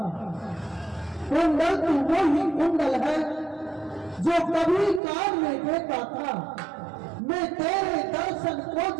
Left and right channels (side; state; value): left; drops out; at 5.0 s